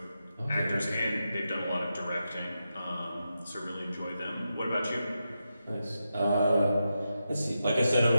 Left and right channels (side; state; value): both; inverted; correlation -0.88